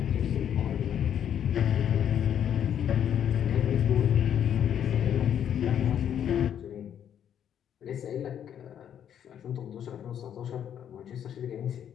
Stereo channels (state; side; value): quieter; right; 9.4 dB